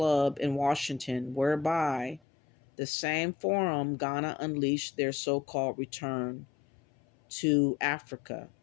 in Washington, whereby the same forum Ghana unleashed their so-called return to Africa.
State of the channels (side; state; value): right; drops out; at 2.2 s